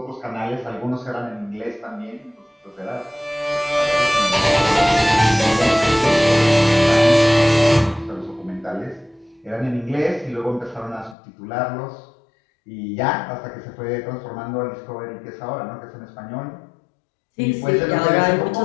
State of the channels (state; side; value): drops out; right; at 11.2 s